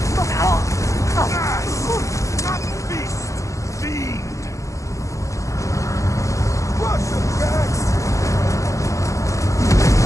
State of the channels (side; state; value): right; late; 0.15 ms